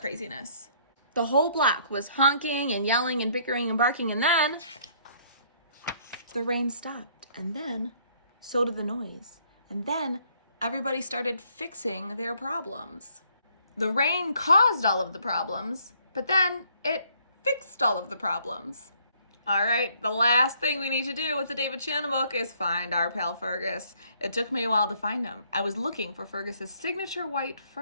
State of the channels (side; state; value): both; inverted; correlation -0.65